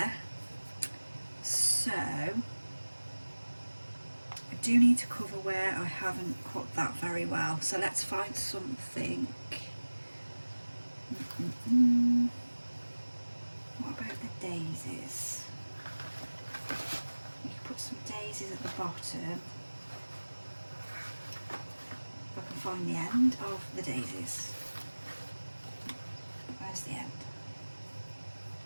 So I do need to cover where I haven't cut that very well, so let's find something. What about the daisies? You can put some daisies at the bottom. If I can find the end of the daisies. Where's the end?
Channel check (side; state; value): both; inverted; correlation -1.00